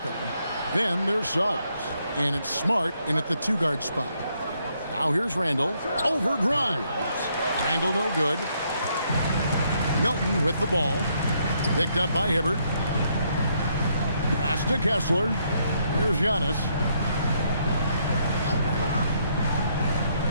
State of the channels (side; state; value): both; inverted; correlation -0.73